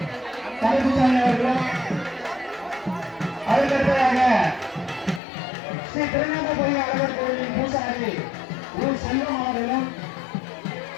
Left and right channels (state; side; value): drops out; right; at 5.2 s